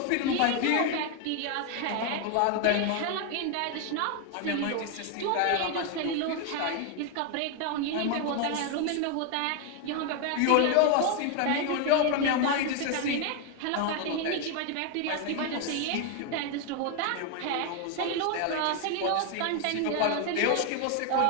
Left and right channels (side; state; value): both; different; correlation 0.01